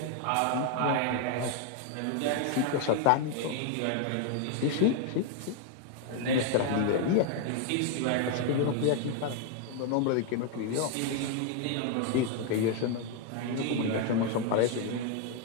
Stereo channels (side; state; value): both; different; correlation 0.00